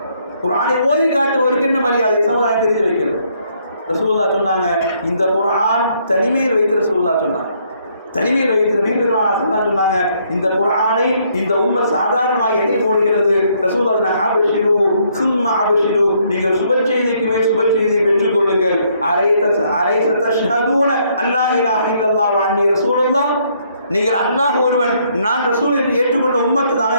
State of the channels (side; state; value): both; inverted; correlation -0.69